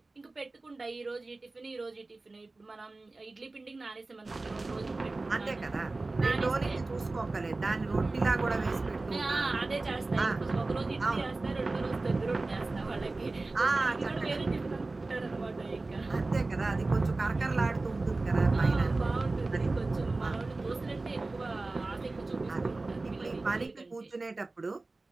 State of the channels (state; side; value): quieter; left; 3.3 dB